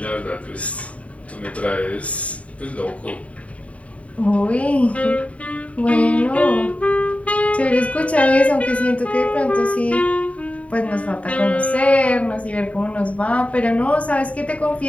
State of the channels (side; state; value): right; late; 0.066 ms